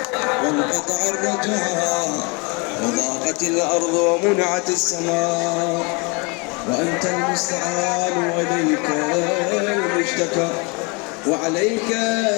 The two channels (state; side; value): quieter; right; 30.3 dB